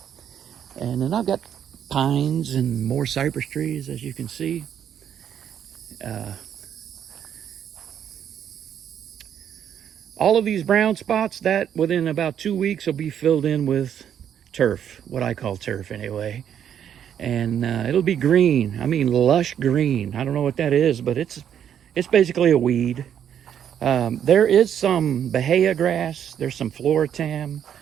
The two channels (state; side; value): quieter; left; 9.2 dB